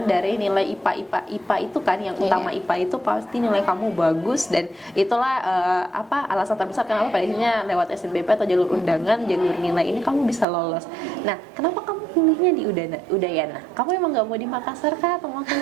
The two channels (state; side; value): drops out; left; at 10.5 s